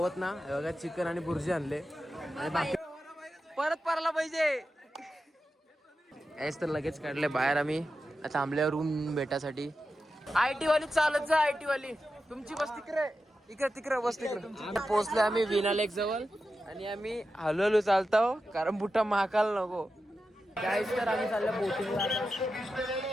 ना बघा, चिकन आणि बुर्जी आणले आणि बाकी परत परला पाहिजे. याच तर लगेच काढले बाहेर. आम्ही थांबल्यावर रूम भेटासाठी. आयटी वाली चालत जा, आयटी वाली तुमची बस तिकडे, इकडे तिकडे बस तिकडे. पोहोचले आम्ही विना लेक जवळ आणि आम्ही हळूहळू चालतो कारण बुटा महाकाल नको. गाईस तर आम्ही चाललो बोटिंगला.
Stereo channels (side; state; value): both; normal; correlation 0.91